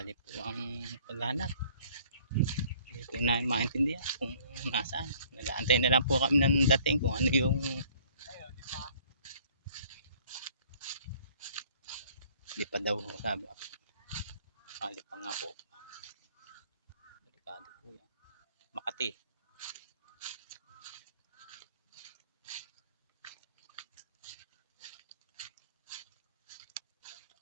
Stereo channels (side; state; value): both; inverted; correlation -0.57